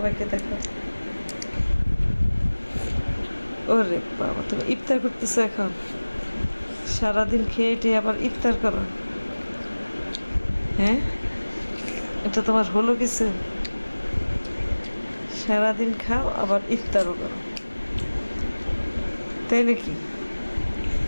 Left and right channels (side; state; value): both; inverted; correlation -1.00